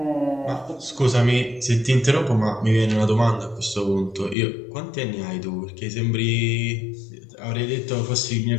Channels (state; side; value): drops out; right; at 4.4 s